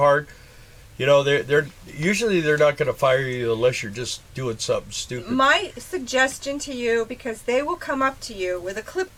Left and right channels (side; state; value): both; identical; correlation 1.00